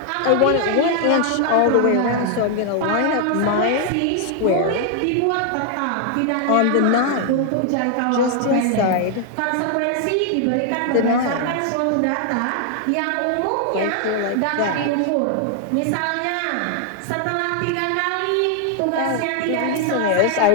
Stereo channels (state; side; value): different; both; correlation 0.00